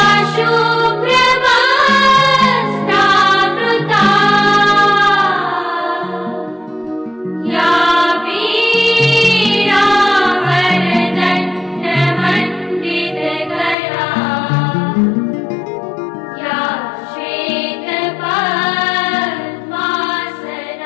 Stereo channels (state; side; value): drops out; right; at 13.8 s